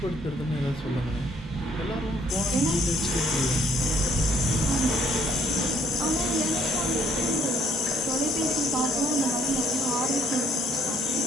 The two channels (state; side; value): normal; both; correlation 0.65